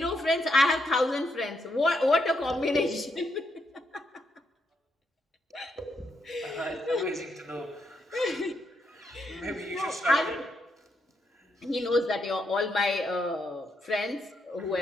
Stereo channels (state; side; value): normal; both; correlation 0.79